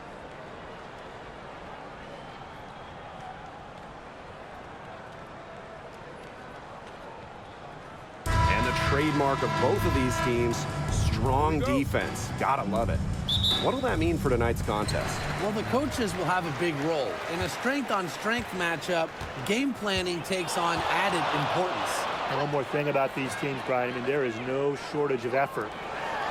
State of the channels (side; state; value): both; identical; correlation 1.00